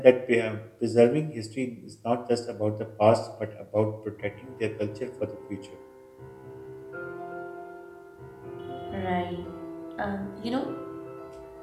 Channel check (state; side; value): identical; both; correlation 1.00